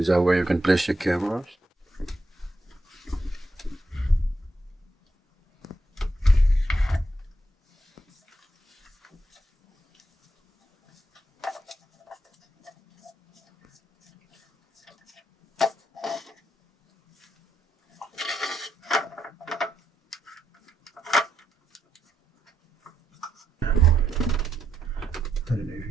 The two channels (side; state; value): both; normal; correlation 0.82